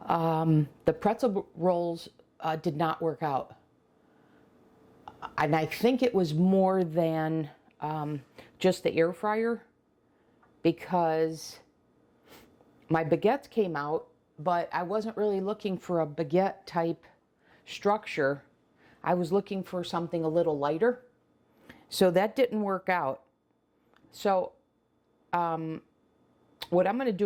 pretzel rolls did not work out. And I think it was more than just the air fryer, because my baguettes came out, but I wasn't really looking for a baguette type structure. I was looking for something a little lighter. So that didn't work out. So what I'm going to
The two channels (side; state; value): both; identical; correlation 1.00